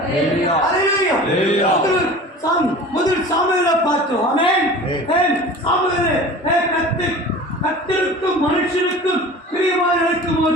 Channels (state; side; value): normal; both; correlation 0.39